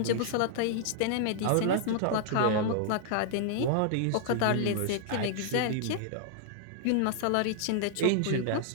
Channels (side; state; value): both; different; correlation -0.01